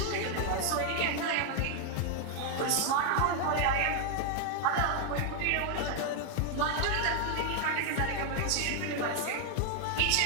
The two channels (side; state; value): both; different; correlation 0.00